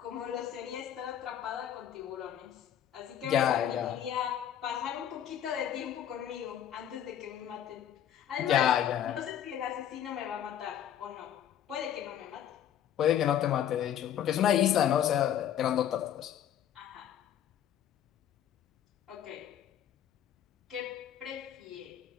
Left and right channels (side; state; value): right; quieter; 10.2 dB